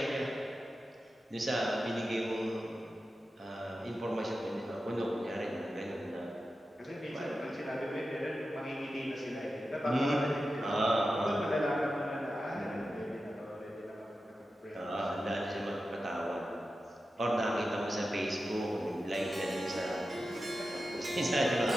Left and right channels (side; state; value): both; normal; correlation 0.92